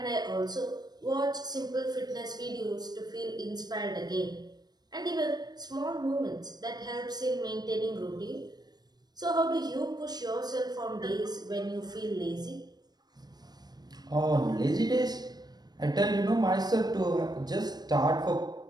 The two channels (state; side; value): late; left; 0.19 ms